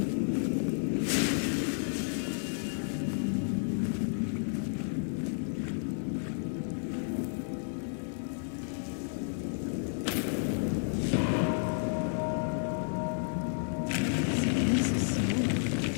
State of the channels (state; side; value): silent; right; digital silence